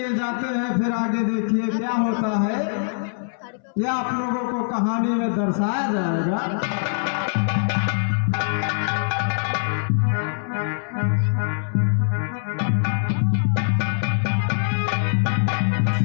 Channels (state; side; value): silent; right; 63 dB below the other